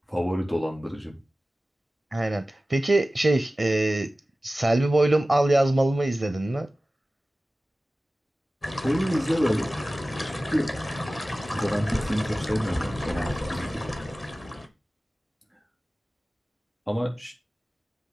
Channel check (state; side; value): normal; both; correlation 0.96